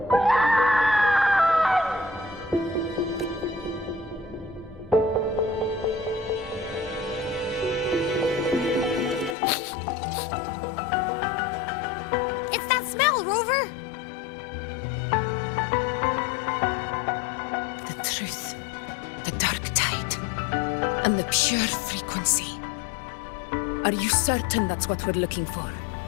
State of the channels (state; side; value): drops out; right; at 9.3 s